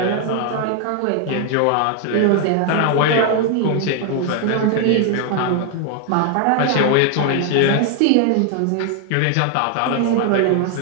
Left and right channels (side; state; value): both; different; correlation 0.00